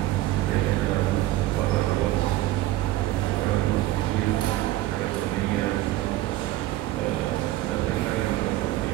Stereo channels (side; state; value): left; quieter; 16.0 dB